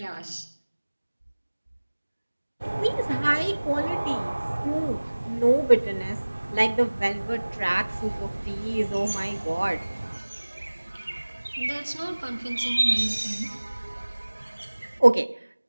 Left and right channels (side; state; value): both; inverted; correlation -1.00